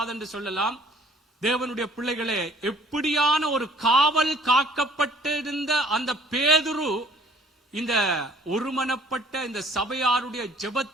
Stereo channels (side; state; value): both; normal; correlation 0.56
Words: என்று சொல்லலாம். தேவனுடைய பிள்ளைகளே, எப்படியான ஒரு காவல் காக்கப்பட்டிருந்த அந்த பேதுரு இந்த ஒருமனப்பட்ட இந்த சபையாருடைய